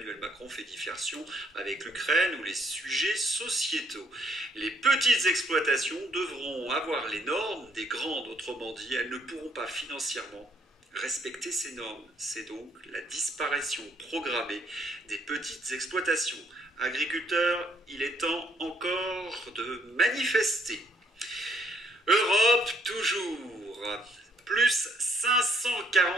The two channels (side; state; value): both; normal; correlation 0.68